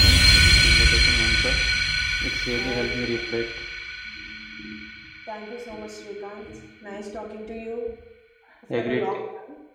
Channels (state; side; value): identical; both; correlation 1.00